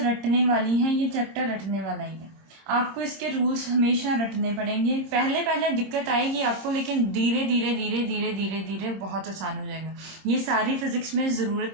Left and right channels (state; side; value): late; left; 26 ms